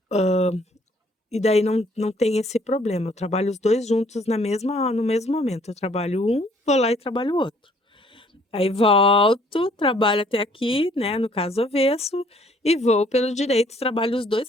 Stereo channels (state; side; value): normal; both; correlation 0.61